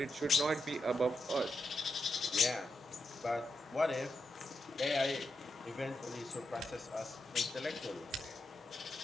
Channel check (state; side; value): normal; both; correlation 0.86